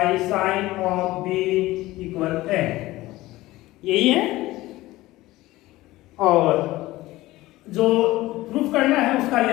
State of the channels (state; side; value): quieter; right; 17.9 dB